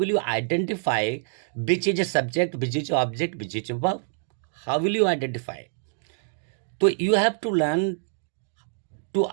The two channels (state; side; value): silent; left; digital silence